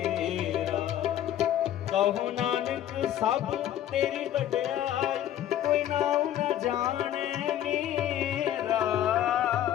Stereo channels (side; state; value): right; quieter; 11.6 dB